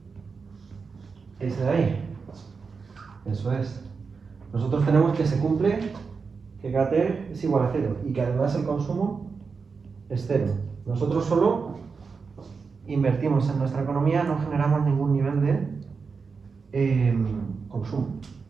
Ese de ahí. Eso es. Nosotros tenemos que se cumple que KT es igual a 0 y que además el consumo es 0. Nosotros solo invertimos en nuestra economía, no generamos ningún nivel de consumo.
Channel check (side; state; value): left; quieter; 5.1 dB